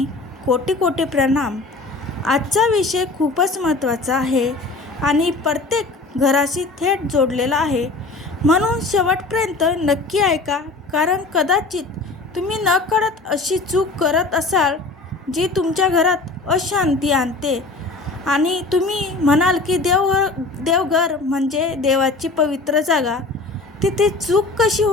कोटी कोटी प्रणाम. आजचा विषय खूपच महत्त्वाचा आहे आणि प्रत्येक घराशी थेट जोडलेला आहे, म्हणून शेवटपर्यंत नक्की ऐका. कारण कदाचित तुम्ही नकळत अशी चूक करत असाल जी तुमच्या घरात अशांती आणते. आणि तुम्ही म्हणाल की देवघर म्हणजे देवाची पवित्र जागा, तिथे चूक कशी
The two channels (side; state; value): right; quieter; 3.5 dB